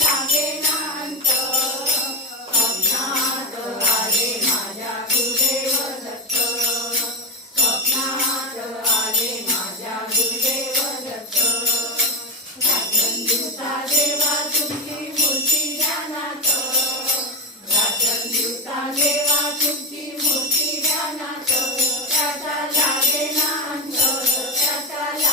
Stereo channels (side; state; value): both; normal; correlation 0.12